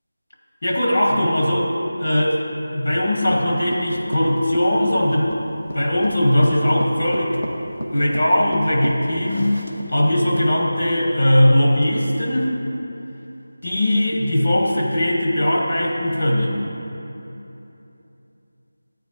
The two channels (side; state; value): both; inverted; correlation -0.97